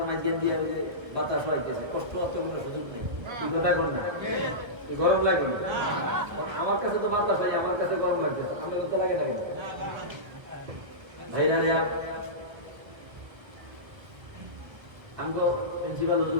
মাঝখান দিয়ে বাতাস হইতেছে, কষ্ট হতে কোনো সুযোগ নেই। গরম লাগে আমার কাছে তো বাতাস হয়, আমার কাছে গরম লাগতেছে, আমার তো লাগে লাগে ভাইরা রে। আমি তো প্রিন্সিপাল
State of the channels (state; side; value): late; left; 1.5 ms